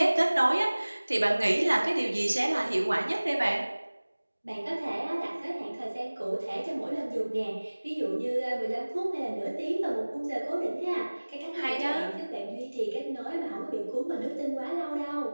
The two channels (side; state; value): both; inverted; correlation -1.00